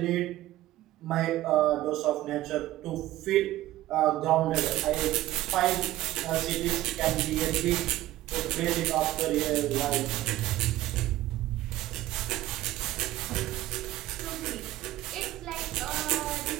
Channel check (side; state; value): left; quieter; 15.5 dB